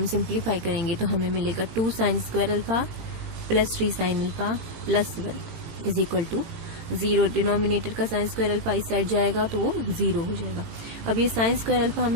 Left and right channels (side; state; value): left; late; 18 ms